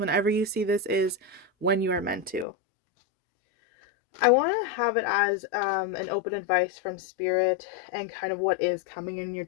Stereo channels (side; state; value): right; drops out; at 2.5 s